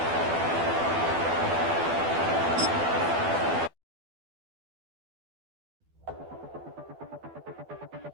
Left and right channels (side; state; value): left; late; 12 ms